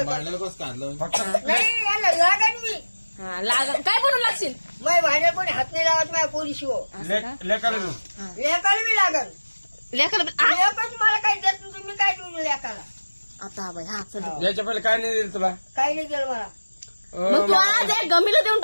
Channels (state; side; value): inverted; both; correlation -1.00